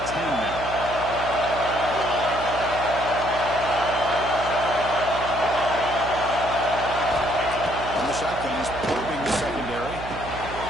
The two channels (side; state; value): right; noise; hum, 11 dB below the sound